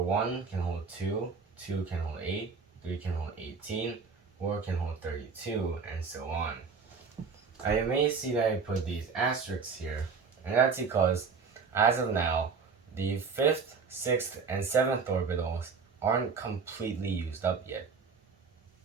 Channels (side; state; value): left; quieter; 5.3 dB